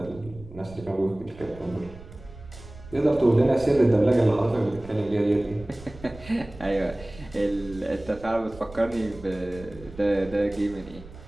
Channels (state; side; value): noise; right; rumble, 18 dB below the sound